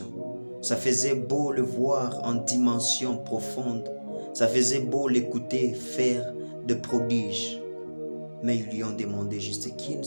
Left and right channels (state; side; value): inverted; both; correlation -1.00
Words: ça faisait beau le voir en dimension profonde, ça faisait beau l'écouter faire de prodiges. Mais ils lui ont demandé juste qu'une